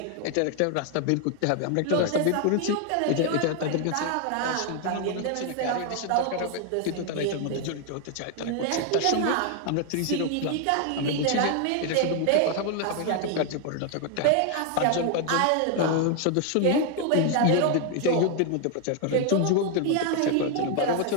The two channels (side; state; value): both; different; correlation 0.01